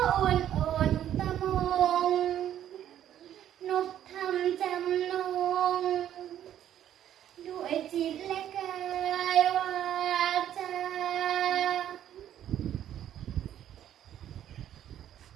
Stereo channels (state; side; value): quieter; left; 11.0 dB